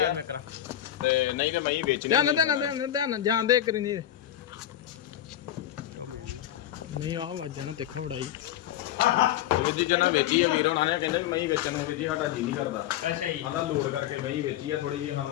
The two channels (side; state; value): right; quieter; 12.0 dB